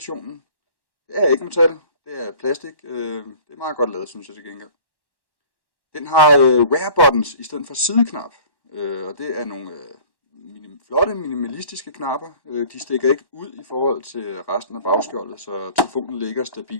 Det er ikke metal, det er plastik. Det er meget godt lavet, synes jeg til gengæld. Den har rare buttons i stedet for sideknap, og det er nogle flotte minimalistiske knapper. De stikker ikke ud i forhold til resten af bagskjoldet, så telefonen ligger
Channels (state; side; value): late; right; 1.1 ms